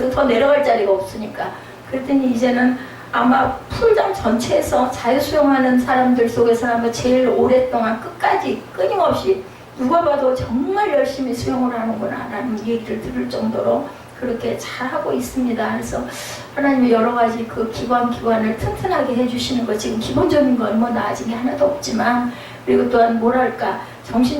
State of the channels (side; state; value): both; identical; correlation 1.00